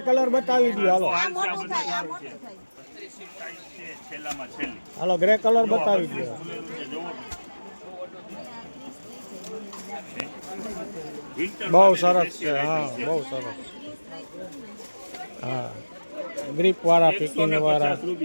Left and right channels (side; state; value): both; inverted; correlation -1.00